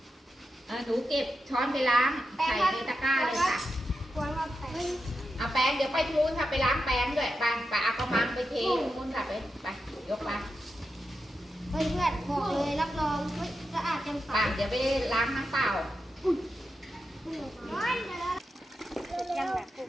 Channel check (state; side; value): normal; both; correlation 0.88